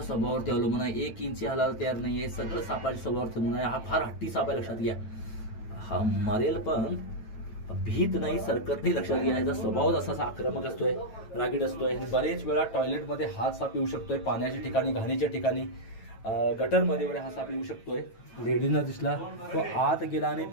स्वभावावरती अवलंबून आहे. 1 इंच हालायला तयार नाही आहे. सगळं सापाच्या स्वभावावरती अवलंबून आहे. हा फार हट्टी साप आहे. लक्षात घ्या हा मरेल पण भीत नाही, सरकत नाही. लक्षात घ्या याचा स्वभाव असा आक्रमक असतोय, रागीट असतोय. आणि बरेच वेळा टॉयलेटमध्ये हा साप येऊ शकतोय. पाण्याच्या ठिकाणी, घाणीच्या ठिकाणी, गटरमध्ये वगैरे हा साप येऊ शकतोय. लेडीजना दिसला तो आत गेला आणि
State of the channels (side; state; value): right; late; 9.1 ms